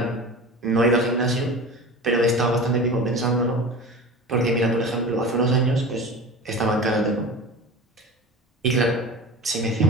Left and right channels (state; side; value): normal; both; correlation 0.33